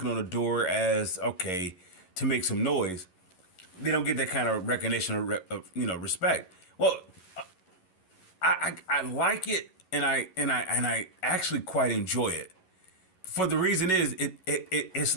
on the door as okay to make some noise. They don't get that kind of recognition or respect. Well, I like it, and I actually quite enjoy it. For the reason is it's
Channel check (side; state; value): right; late; 11 ms